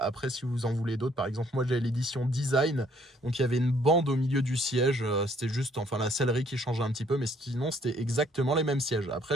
si vous en voulez d'autres, par exemple, moi, j'avais l'édition Design. Donc, il y avait une bande au milieu du siège. C'était juste, enfin, la sellerie qui changeait un petit peu. Mais sinon, c'était exactement les mêmes sièges. Après,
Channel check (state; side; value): normal; both; correlation 0.64